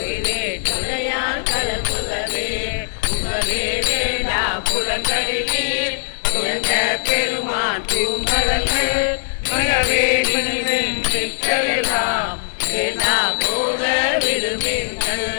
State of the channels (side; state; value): right; silent; digital silence